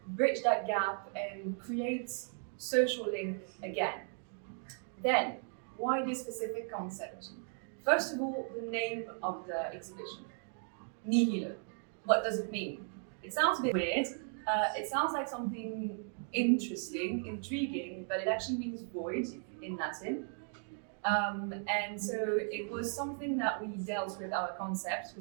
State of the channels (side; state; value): left; silent; 54 dB below the other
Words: bridge that gap and create social link again. Then, why this specific concept? First of all, the name of the exhibition, Nihilo. What does it mean? It sounds a bit weird. It sounds like something interesting, intriguing, but it actually means void in Latin. And so it was something that we dealt with our concepts,